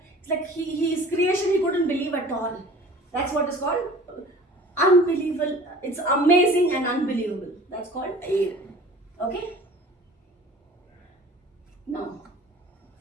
it's like his creation he couldn't believe at all. That's what is called unbelievable. It's amazing and unbelievable. That's called awe. Okay? Now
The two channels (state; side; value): normal; both; correlation 0.45